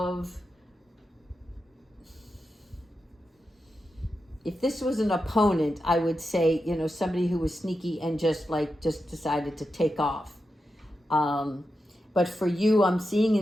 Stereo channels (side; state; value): both; normal; correlation 0.89